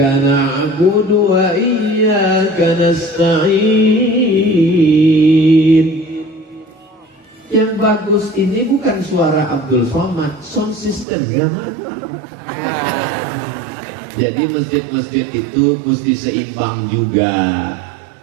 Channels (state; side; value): drops out; left; at 11.1 s